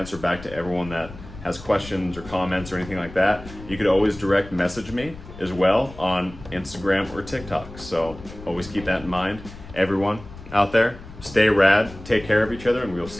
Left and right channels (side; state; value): left; noise; rumble, 16 dB below the sound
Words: back to everyone that has questions or comments or anything like that. You could always direct message me as well on Instagram or TikTok. So always keep that in mind. Everyone out there, stay rad, take care of each other, and we'll